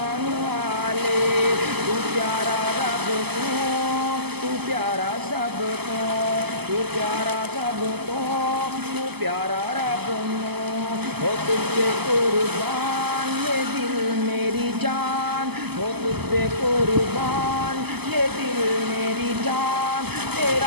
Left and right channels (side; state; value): left; late; 0.97 ms